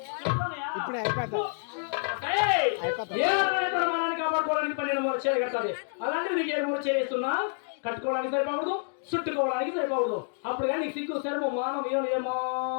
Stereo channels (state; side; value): silent; right; 59 dB below the other